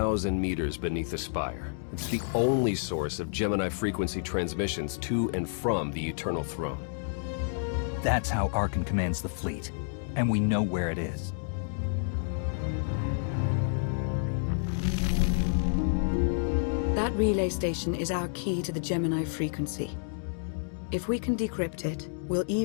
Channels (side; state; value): right; silent; digital silence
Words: meters beneath the spire. It's the only source of Gemini frequency transmissions to and from the Eternal Throne. That's how Arkan commands the fleet, and we know where it is. That relay station is our key to the Gemini frequency. If we can decrypt it, we'll